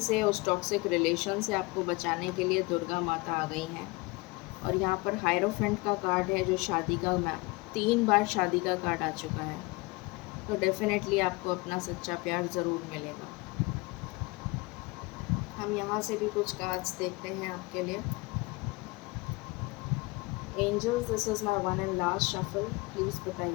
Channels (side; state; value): right; quieter; 24.4 dB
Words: उस टॉक्सिक रिलेशन से आपको बचाने के लिए दुर्गा माता आ गई हैं। और यहाँ पर हायरोफेंट का कार्ड है जो शादी का 3 बार शादी का कार्ड आ चुका है। तो डेफिनेटली आपको अपना सच्चा प्यार ज़रूर मिलेगा। हम यहाँ से भी कुछ कार्ड्स देखते हैं आपके लिए। Angels, this is my one and last shuffle. Please